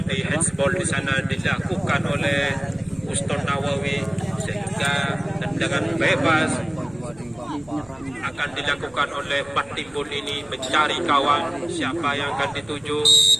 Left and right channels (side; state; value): right; noise; hum, 26 dB below the sound